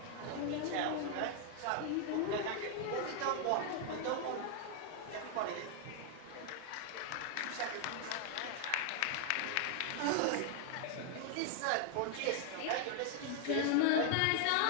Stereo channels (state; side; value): different; both; correlation 0.00